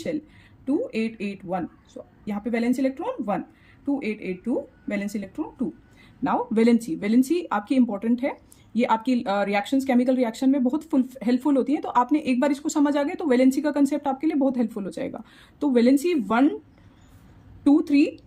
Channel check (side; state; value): both; identical; correlation 1.00